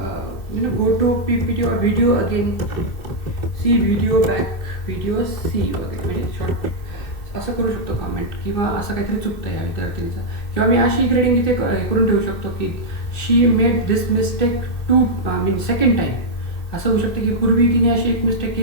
go to PPT और video again, see video back, video see वगैरे, म्हणजे शॉर्ट असं करू शकतो कॉमेंट, किंवा असं काहीतरी चुकतं या विद्यार्थिनीचं. किंवा मी अशी ग्रेडिंग इथे करून ठेवू शकतो की शी मेड दिस मिस्टेक सेकंड टाईम. असं होऊ शकतं की पूर्वी तिने अशी एक मिस्टेक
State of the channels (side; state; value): right; late; 2.7 ms